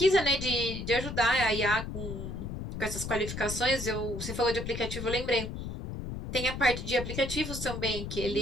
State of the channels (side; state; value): left; noise; rumble, 7 dB below the sound